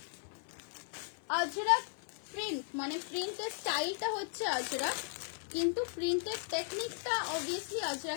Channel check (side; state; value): right; silent; 53 dB below the other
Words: আজরাক প্রিন্ট, মানে প্রিন্টের স্টাইলটা হচ্ছে আজরাক, কিন্তু প্রিন্টের টেকনিকটা অবভিয়াসলি